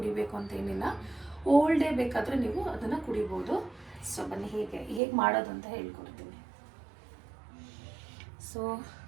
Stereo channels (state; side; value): drops out; left; at 5.0 s